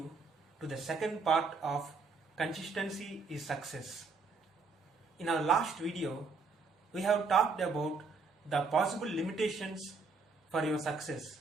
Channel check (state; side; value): quieter; left; 4.3 dB